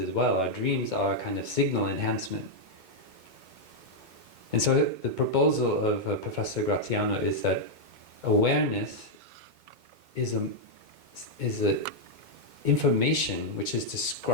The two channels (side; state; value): left; late; 2.2 ms